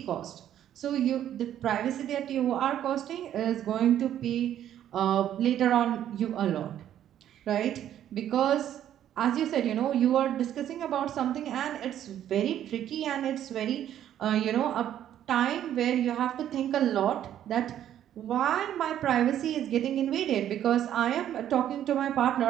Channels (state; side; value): quieter; left; 11.0 dB